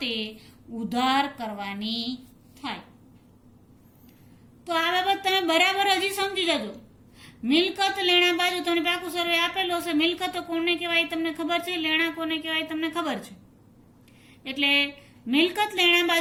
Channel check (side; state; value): both; identical; correlation 1.00